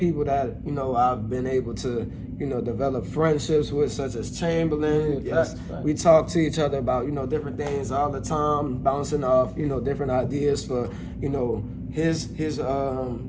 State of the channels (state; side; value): identical; both; correlation 1.00